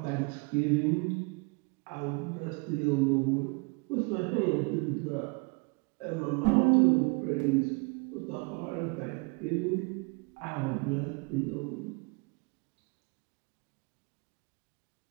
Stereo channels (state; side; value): quieter; left; 32.0 dB